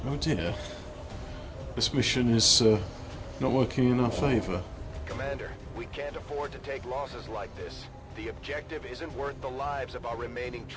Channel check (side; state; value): both; identical; correlation 1.00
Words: Oh dear. This mission is not working in our favour. Commander, we can't afford to take losses like this. The objective isn't worth the lives of our remaining